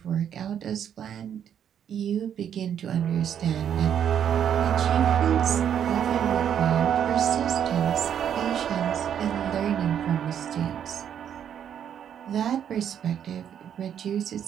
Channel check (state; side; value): quieter; left; 9.1 dB